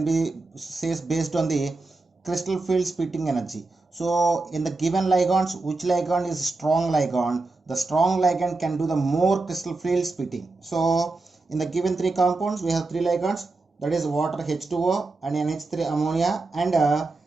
be says based on the crystal field splitting energy. So in the given ligands, which ligand is strong ligand? The strong ligand can do the more crystal field splitting. So in the given 3 compounds, we have 3 ligands, that is water H2O and NH3 ammonia and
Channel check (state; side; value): quieter; left; 3.4 dB